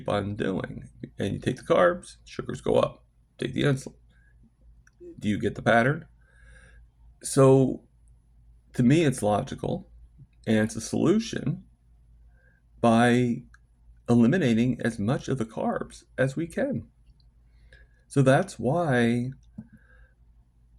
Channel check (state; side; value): identical; both; correlation 1.00